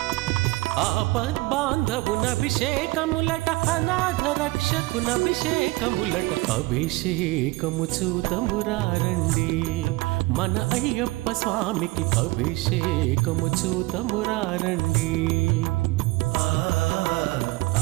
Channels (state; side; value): quieter; left; 21.6 dB